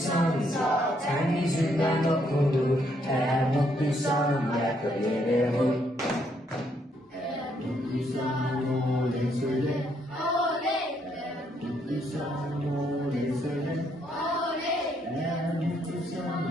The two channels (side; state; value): both; normal; correlation 0.73